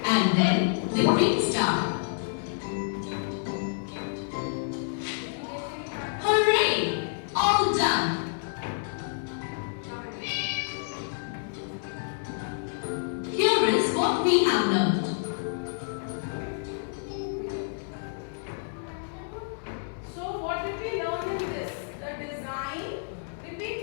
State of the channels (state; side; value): silent; right; 57 dB below the other